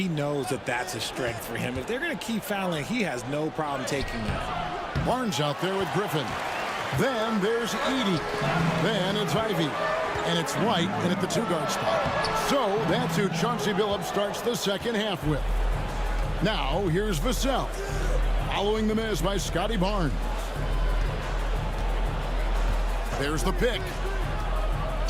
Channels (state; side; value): identical; both; correlation 1.00